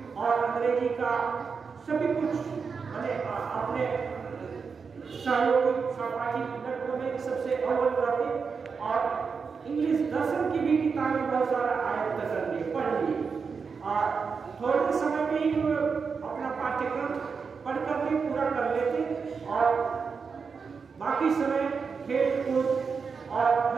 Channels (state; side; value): quieter; left; 5.5 dB